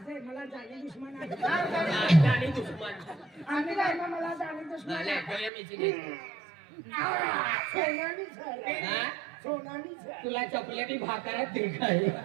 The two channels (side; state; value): left; drops out; at 5.5 s